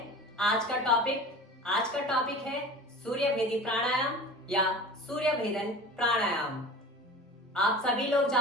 आज का टॉपिक। आज का टॉपिक है सूर्य भेदी प्राणायाम या सूर्य भेदन प्राणायाम। आप सभी लोग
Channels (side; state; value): both; normal; correlation 0.37